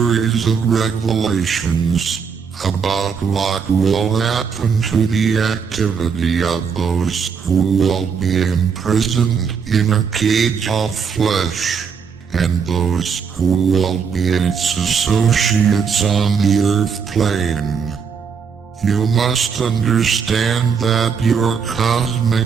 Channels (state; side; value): quieter; left; 6.3 dB